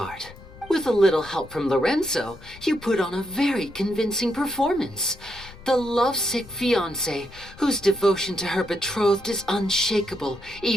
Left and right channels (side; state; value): both; normal; correlation 0.81